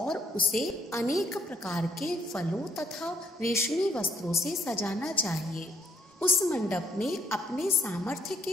उसे अनेक प्रकार के फलों तथा रेशमी वस्त्रों से सजाना चाहिए। उस मंडप में अपने सामर्थ्य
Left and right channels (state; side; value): normal; both; correlation 0.68